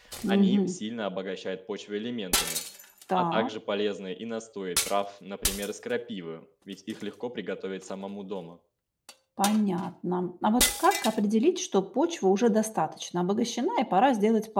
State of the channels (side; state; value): both; identical; correlation 1.00